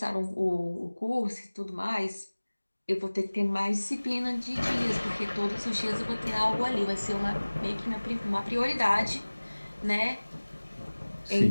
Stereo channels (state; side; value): inverted; both; correlation -1.00